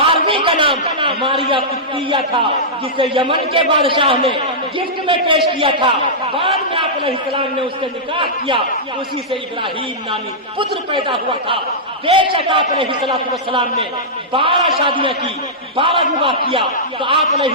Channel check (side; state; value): both; normal; correlation -0.13